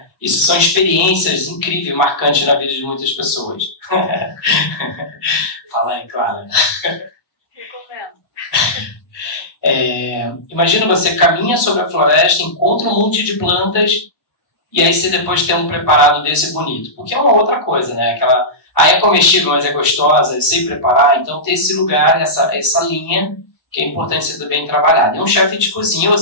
Isso são experiências incríveis, marcantes na vida de muitas pessoas. Fala aí, Clara. Imagina você caminha sobre a floresta, encontra um monte de plantas e aí você depois tem um preparado desse bonito. Porque é uma outra coisa, né? É comestível, mas é gostosa, eu sei preparar. Então tem esse lugar, essa linha que é importante ser bem trabalhado. E um chefe de cozinha, ou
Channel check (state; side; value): late; right; 1.2 ms